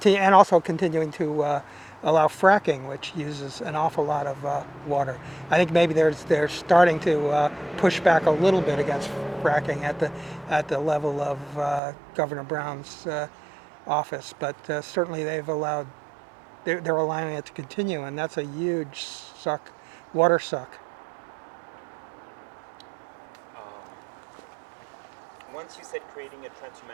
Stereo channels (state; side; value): drops out; left; at 11.8 s